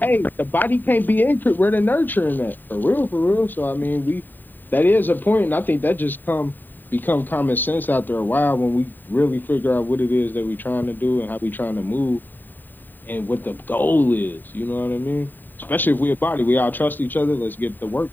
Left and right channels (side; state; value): right; late; 0.090 ms